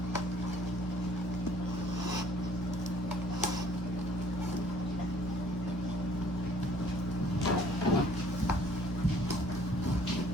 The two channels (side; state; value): both; normal; correlation 0.57